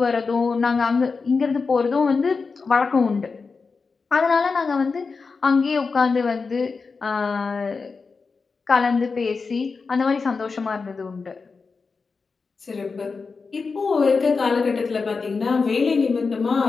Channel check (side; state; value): right; quieter; 4.6 dB